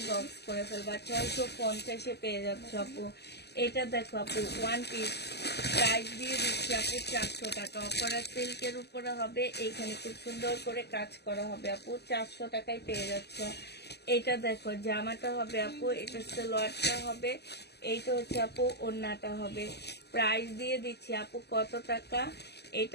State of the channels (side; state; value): right; late; 0.49 ms